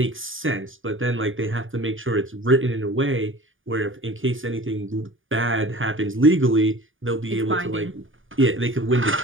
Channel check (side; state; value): left; late; 0.58 ms